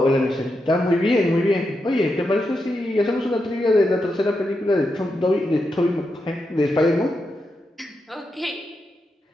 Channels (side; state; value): both; normal; correlation 0.86